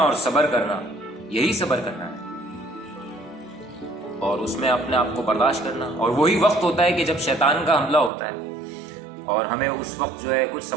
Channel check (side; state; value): left; drops out; at 8.1 s